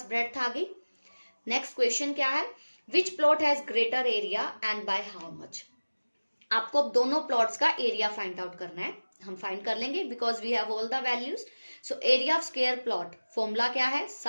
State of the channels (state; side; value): inverted; both; correlation -1.00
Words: ब्रेड्थ आ गई। नेक्स्ट क्वेश्चन क्या है, which plot has greater area and by how much. आपको अब दोनों प्लॉट्स का एरिया फाइंड आउट करना है, हम फाइंड कर लेंगे because we have all the values. So area of square plot formula क्या है,